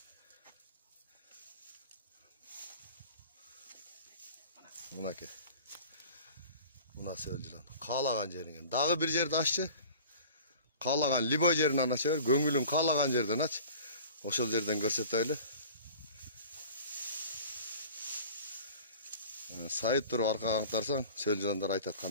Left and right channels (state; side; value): inverted; both; correlation -0.42